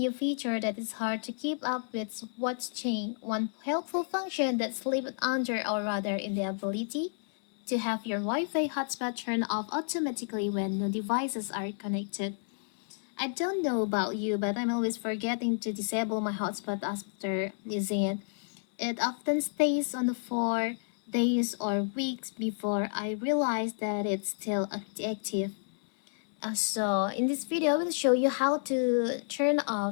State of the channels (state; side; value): silent; right; 57 dB below the other